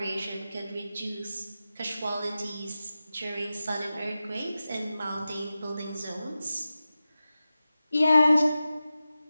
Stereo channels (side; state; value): both; inverted; correlation -0.94